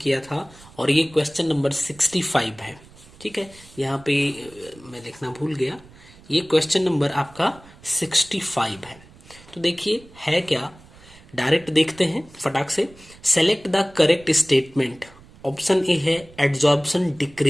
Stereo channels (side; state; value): right; noise; rumble, 23 dB below the sound